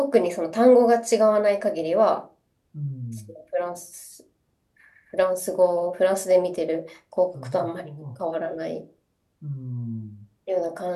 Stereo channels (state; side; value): identical; both; correlation 1.00